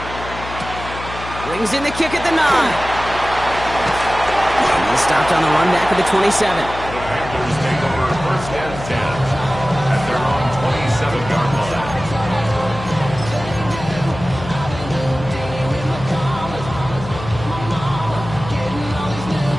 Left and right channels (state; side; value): noise; left; hum, 11 dB below the sound